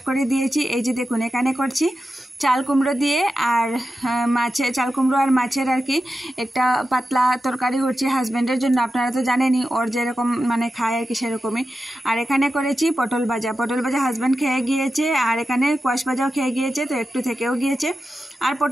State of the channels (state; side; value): normal; both; correlation 0.91